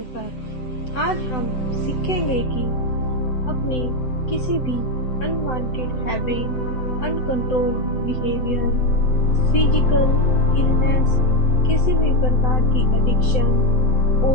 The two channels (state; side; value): late; right; 7.9 ms